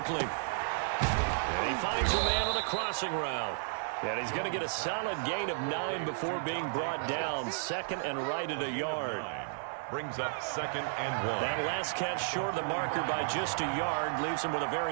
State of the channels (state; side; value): silent; left; 56 dB below the other